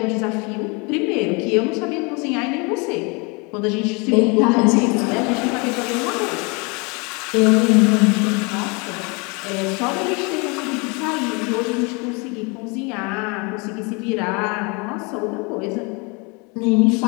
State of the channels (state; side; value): quieter; right; 30.0 dB